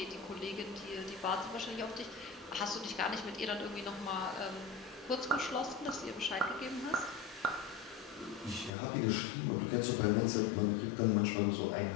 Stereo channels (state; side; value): drops out; right; at 8.7 s